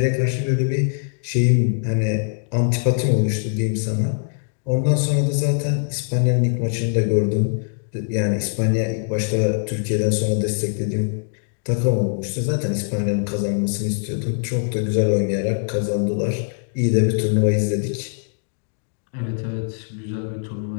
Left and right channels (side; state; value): right; silent; digital silence